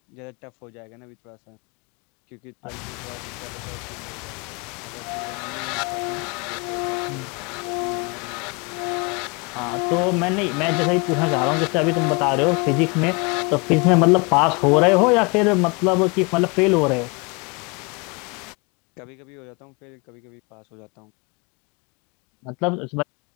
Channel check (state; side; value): quieter; right; 29.8 dB